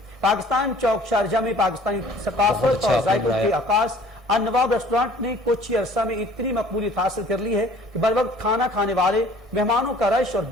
पाकिस्तान चौक शारजा में पाकिस्तानी सकाफत और जायकों के आकाश अन्नवाब रेस्टोरेंट ने कुछ ही अरसा में इतनी मकबूलियत हासिल कर ली है कि बर वक्त खाना खाने वाले मेहमानों का रश और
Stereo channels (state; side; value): normal; both; correlation 0.51